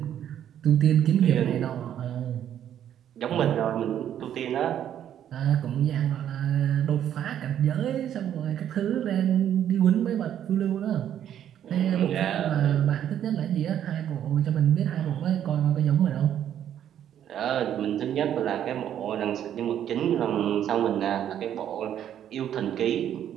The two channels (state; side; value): quieter; left; 10.2 dB